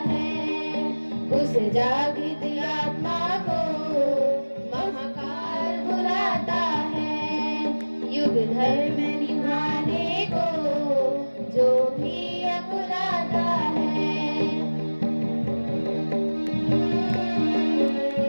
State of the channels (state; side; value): inverted; both; correlation -1.00